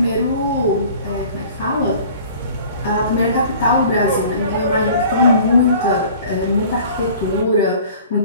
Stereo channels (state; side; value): inverted; both; correlation -0.47